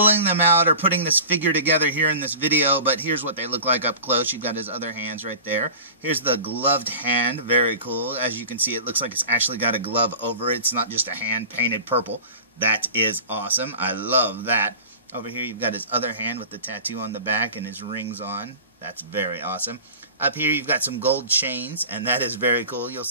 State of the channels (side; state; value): both; inverted; correlation -0.37